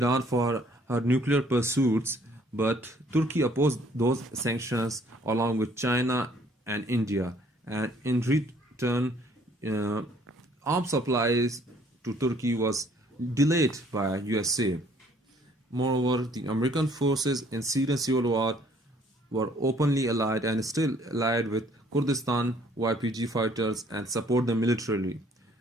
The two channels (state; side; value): normal; both; correlation 0.61